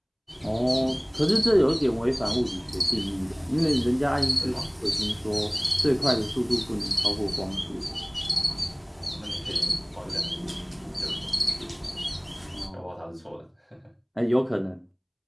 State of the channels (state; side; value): identical; both; correlation 1.00